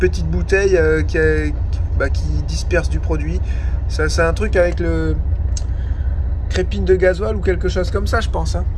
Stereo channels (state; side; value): identical; both; correlation 1.00